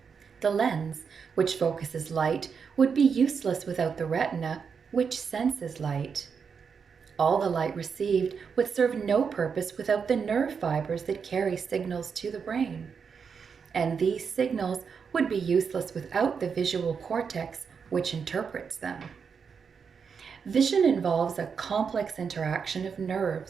The lens, which focuses light, would be useless without the retina, which senses light. All the light received would serve no purpose without the nerve fibers that carry signals to the brain. And these signals would be useless without the visual cortex, which interprets them. Vision involves a complex interaction of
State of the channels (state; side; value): quieter; left; 6.2 dB